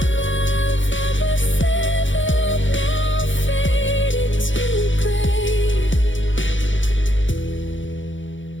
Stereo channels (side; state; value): right; late; 0.56 ms